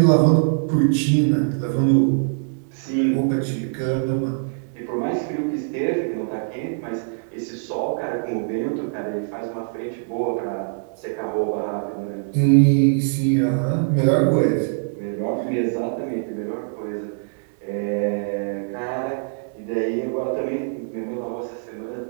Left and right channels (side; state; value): left; silent; digital silence